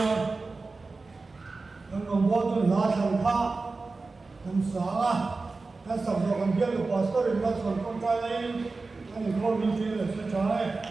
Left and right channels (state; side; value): quieter; left; 3.8 dB